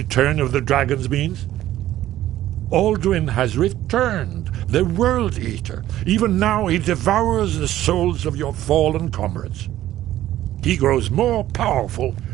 of the dragons means? Alduin has returned, the World Eater. Even now he devours the souls of your fallen comrades. He grows more powerful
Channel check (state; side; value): quieter; left; 13.6 dB